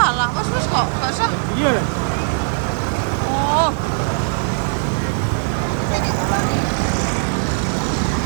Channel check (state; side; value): silent; left; 66 dB below the other